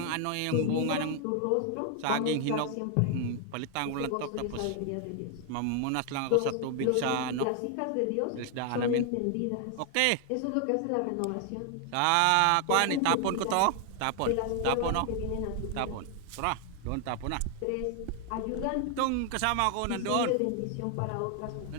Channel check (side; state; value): both; different; correlation 0.00